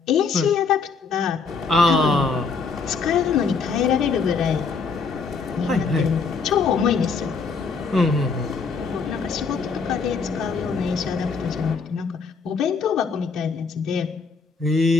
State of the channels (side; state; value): right; quieter; 4.9 dB